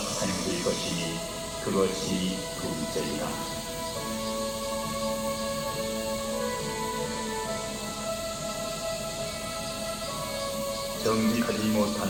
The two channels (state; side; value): identical; both; correlation 1.00